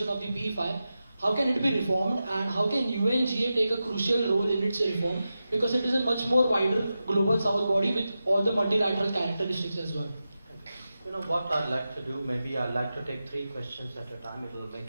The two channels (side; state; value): both; inverted; correlation -0.92